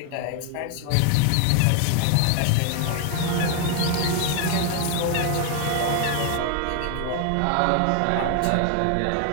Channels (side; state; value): both; different; correlation 0.00